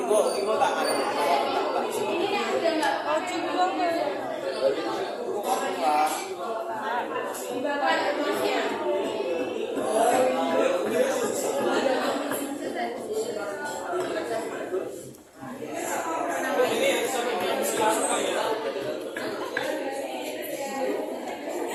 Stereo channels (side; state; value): both; identical; correlation 1.00